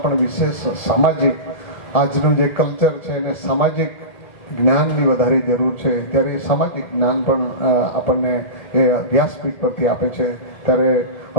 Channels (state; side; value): late; right; 1.7 ms